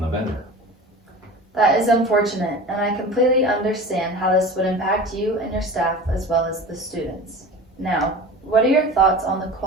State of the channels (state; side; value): normal; both; correlation 0.35